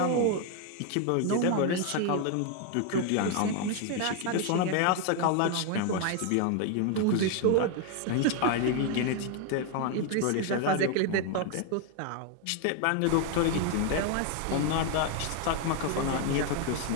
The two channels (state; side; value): different; both; correlation 0.01